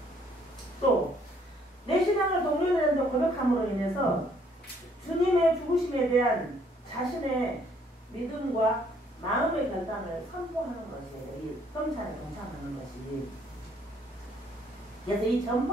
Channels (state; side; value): normal; both; correlation 0.64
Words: 또 내 신앙을 동료들한테 고백함으로 인해서 주님의 죽으심에 대한 자신의 믿음과 마음의 결단을 선포하는 것이에요. 이 성찬에 동참하는 것이. 그래서 이